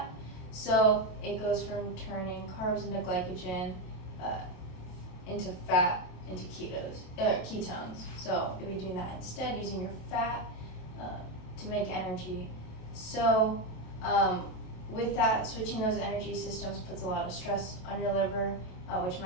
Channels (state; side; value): late; right; 28 ms